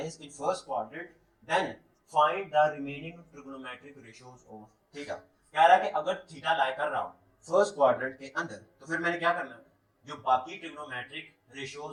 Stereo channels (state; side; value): identical; both; correlation 1.00